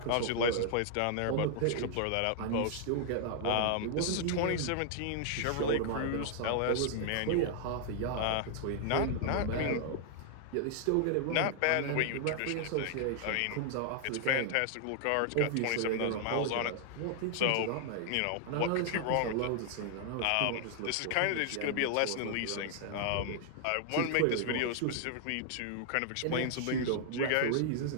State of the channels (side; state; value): both; different; correlation 0.00